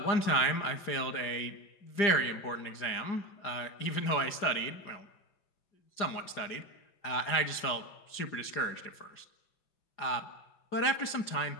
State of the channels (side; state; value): right; late; 5.0 ms